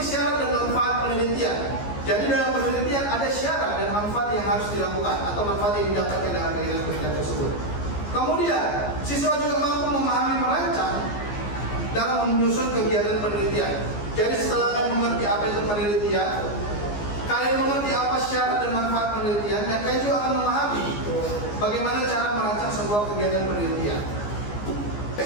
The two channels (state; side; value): late; right; 14 ms